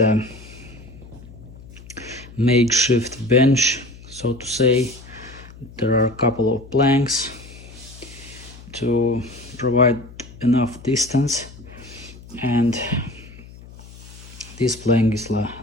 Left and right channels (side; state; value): left; noise; hum, 18 dB below the sound